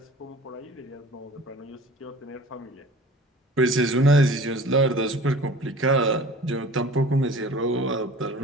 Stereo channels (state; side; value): normal; both; correlation 0.43